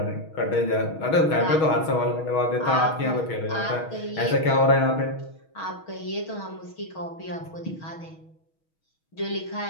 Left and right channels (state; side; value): late; right; 6.3 ms